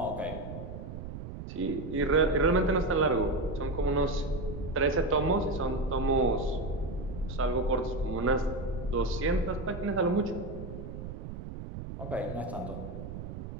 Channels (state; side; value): noise; right; rumble, 9 dB below the sound